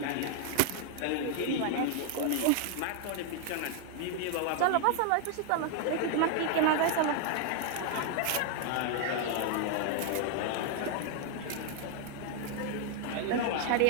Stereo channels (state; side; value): different; both; correlation 0.00